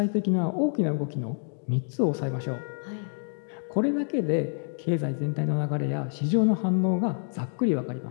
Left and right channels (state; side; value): silent; right; digital silence